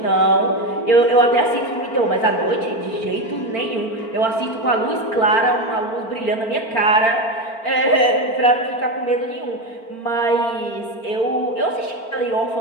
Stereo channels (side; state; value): right; late; 4.4 ms